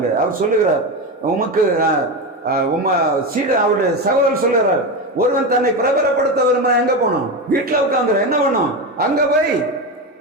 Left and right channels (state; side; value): normal; both; correlation 0.17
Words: அவர் சொல்லுகிறார், உமக்கு சீடு அவருடைய சகோதரர் சொல்லுகிறார், ஒருவன் தன்னை பிரபலப்படுத்த வருமா எங்க போனோம்? வீட்டுல உட்கார்ந்து என்ன பண்ணும்? அங்க போய்